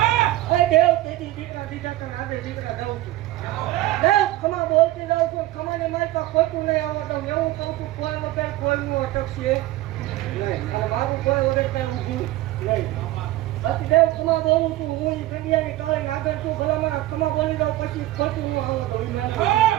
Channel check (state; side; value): quieter; left; 16.3 dB